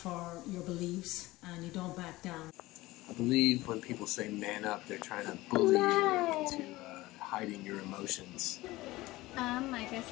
your beliefs and you don't back down. I believe when people say man up, they're trying to bully you into hiding your emotions. I guess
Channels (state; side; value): quieter; right; 18.9 dB